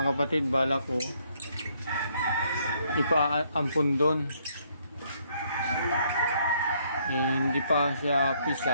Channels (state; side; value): inverted; both; correlation -0.69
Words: kapatid, balak ko ipaampun doon. Hindi pa siya